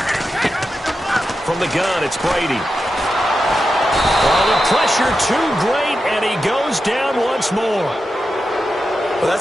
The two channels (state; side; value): normal; both; correlation 0.89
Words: From the gun, it's Brady. Oh, the pressure too great, and he goes down once more. Well,